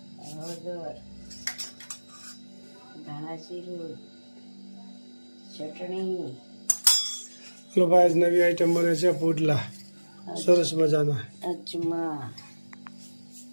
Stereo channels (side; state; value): both; inverted; correlation -1.00